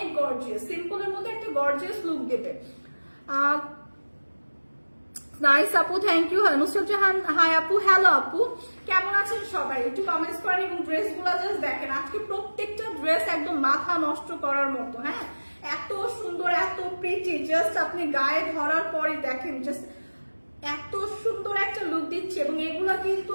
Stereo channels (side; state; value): both; inverted; correlation -1.00